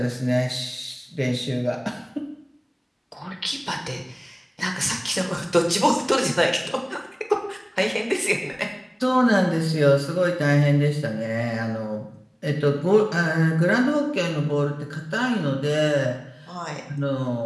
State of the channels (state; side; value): identical; both; correlation 1.00